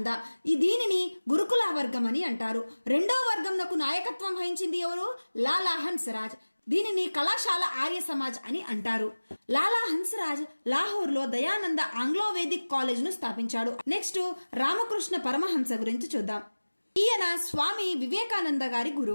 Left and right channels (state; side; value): inverted; both; correlation -1.00